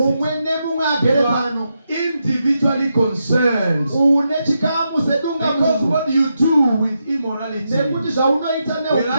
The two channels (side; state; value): both; inverted; correlation -0.85